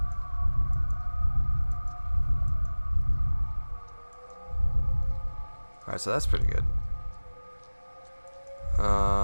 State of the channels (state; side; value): inverted; both; correlation -1.00